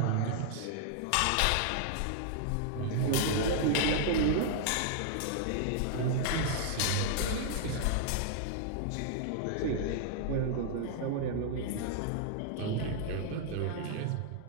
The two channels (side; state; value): both; different; correlation -0.01